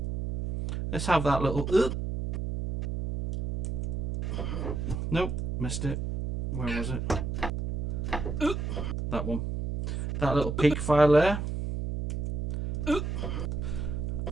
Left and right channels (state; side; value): noise; right; hum, 1 dB below the sound